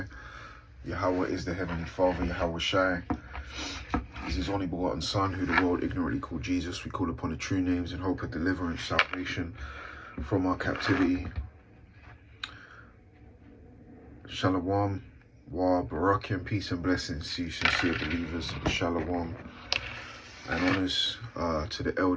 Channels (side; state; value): both; identical; correlation 1.00